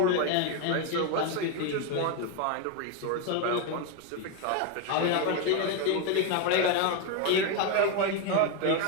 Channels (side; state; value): both; different; correlation 0.02